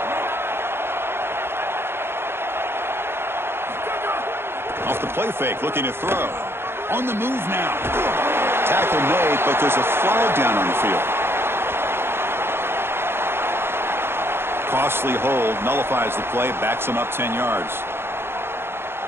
Off the play fake, looking to throw. On the move now. Tackle made, but there's a flag down on the field. Costly hold, nullifies the play, backs him up 10 yards.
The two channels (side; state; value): left; late; 0.11 ms